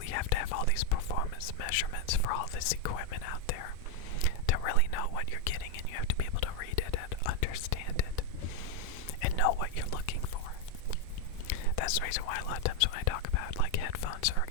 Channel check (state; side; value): different; both; correlation 0.02